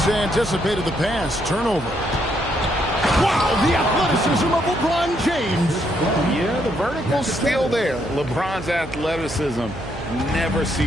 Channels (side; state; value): right; noise; hum, 13 dB below the sound